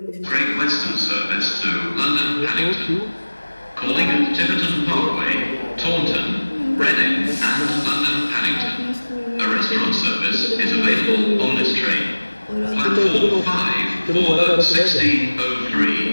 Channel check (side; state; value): both; inverted; correlation -1.00